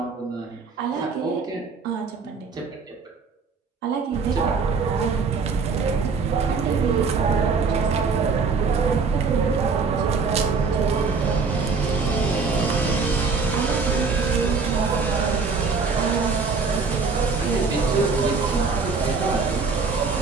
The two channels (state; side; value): quieter; left; 4.8 dB